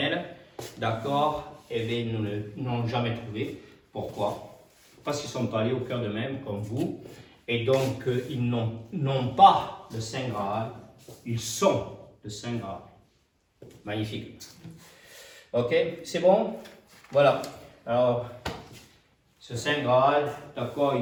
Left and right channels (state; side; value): identical; both; correlation 1.00